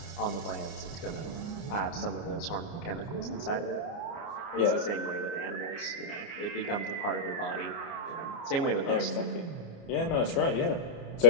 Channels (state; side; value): late; right; 29 ms